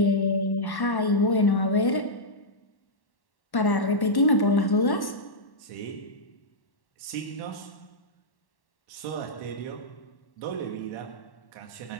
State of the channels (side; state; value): right; late; 1.1 ms